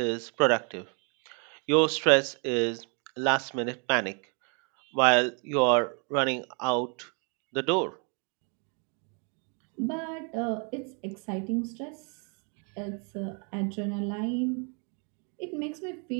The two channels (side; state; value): left; quieter; 36.9 dB